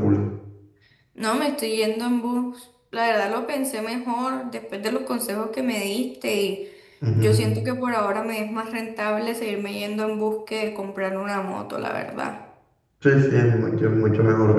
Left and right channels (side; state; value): both; identical; correlation 1.00